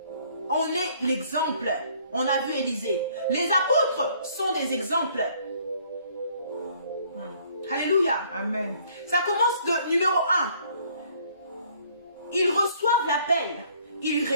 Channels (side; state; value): both; inverted; correlation -0.61